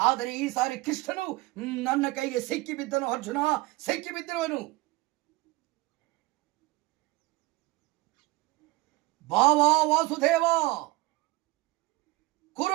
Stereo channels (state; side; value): quieter; left; 21.0 dB